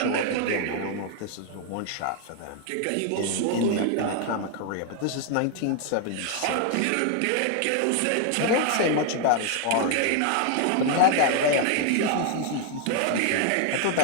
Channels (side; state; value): both; different; correlation 0.00